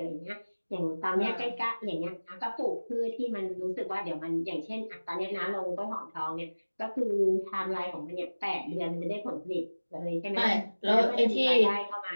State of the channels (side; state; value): both; inverted; correlation -1.00